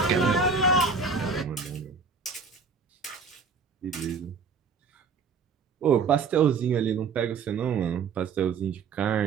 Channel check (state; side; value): quieter; left; 5.1 dB